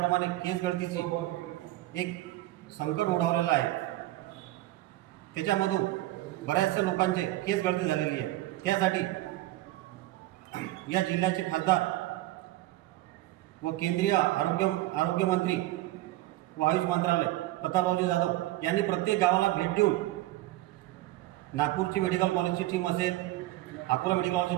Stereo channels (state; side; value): quieter; left; 16.7 dB